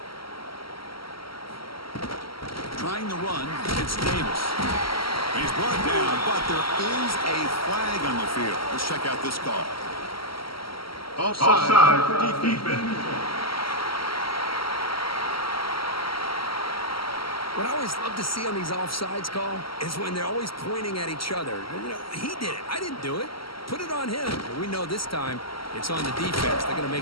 Trying the run, it's Davis. He's brought down, but there is a flag on the field. Let's check out this call. Offside defense. What I always love to see on these offsides call is when they're always pointing at each other. You know, he did it. I didn't do it. Put it on him. But we know this time it's on the defense. They're going to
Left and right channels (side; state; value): right; late; 0.74 ms